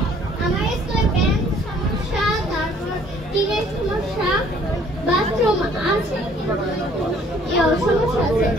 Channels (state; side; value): normal; both; correlation 0.59